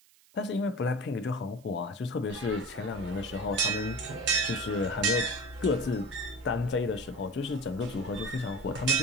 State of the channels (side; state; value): right; noise; hiss, 29 dB below the sound